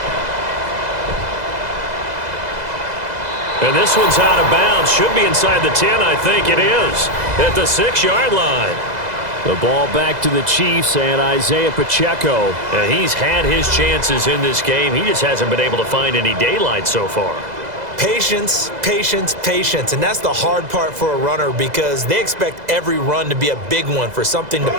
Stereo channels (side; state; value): left; late; 2.0 ms